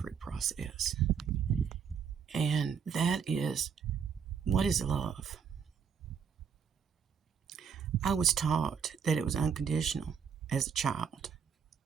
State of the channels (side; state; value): left; quieter; 7.0 dB